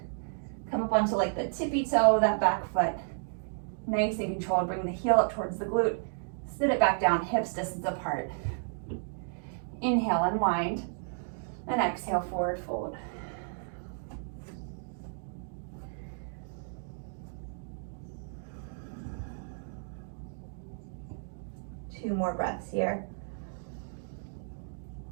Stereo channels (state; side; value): silent; left; digital silence